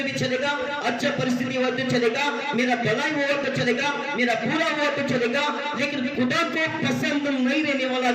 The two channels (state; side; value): identical; both; correlation 1.00